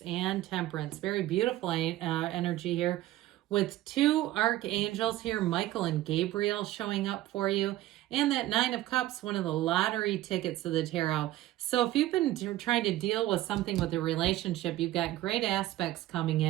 and Temperance. Very beautiful energy here with two archangels here, Michael and Gabriel, showing up for you. And that Nine of Cups, one of the lottery tickets of the tarot. So if you've been trying to deal with something with a relationship, you've got great aspects coming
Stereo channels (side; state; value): left; quieter; 15.3 dB